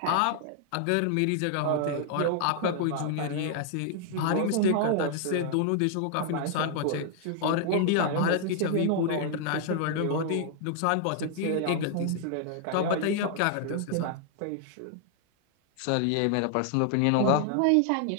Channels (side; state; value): both; different; correlation -0.01